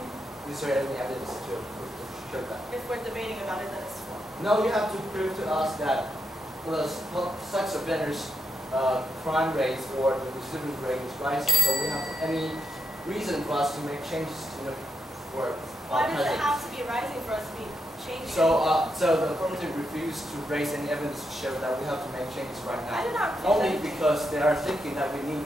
Is there any evidence to show that? if we're debating about it, then it's wrong. No, you have to prove to us that the sex offenders' crime rates or the recidivist rate is rising. So we have any reason for us to make changes to the for Why does it present. have to be rising for us to be changing? So the affirmative refused to raise any evidence to show that we have to make changes right now. I did not refuse Only anything. because they are thinking that we need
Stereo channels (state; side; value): normal; both; correlation 0.83